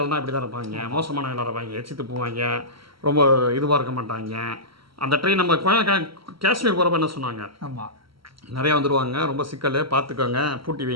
இப்படி தான் இருப்பாங்க, மோசமானவங்களாக இருப்பாங்க, எச்சித்து போவாங்க, ரொம்ப இதுவாக இருக்க மாட்டாங்க. அந்த ட்ரெயின் நம்ம காஷ்மீர் போகிறப்ப என்ன சொன்னாங்க, நிறையா வந்துடுவாங்க, ரொம்ப சிக்கல் பார்த்துக்கோங்க, பூட்டி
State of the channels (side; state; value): left; late; 0.74 ms